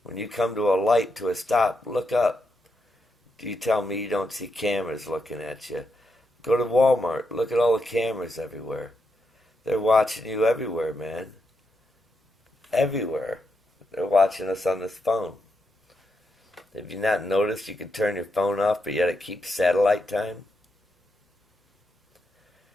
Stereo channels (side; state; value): both; normal; correlation 0.83